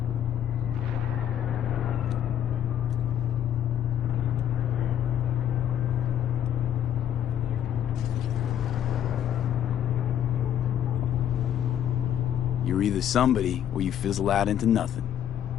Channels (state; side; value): quieter; right; 10.2 dB